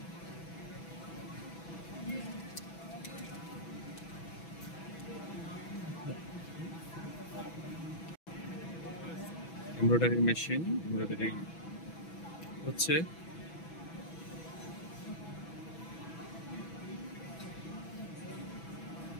এমব্রয়ডারি মেশিন এমব্রয়ডারি হচ্ছে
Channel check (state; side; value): late; right; 6.1 ms